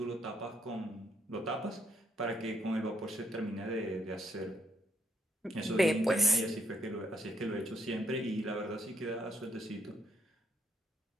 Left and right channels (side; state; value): both; normal; correlation 0.74